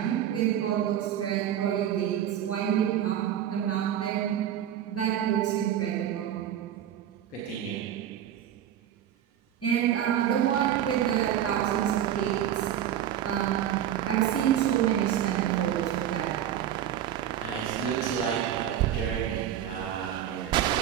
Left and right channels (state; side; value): quieter; left; 10.6 dB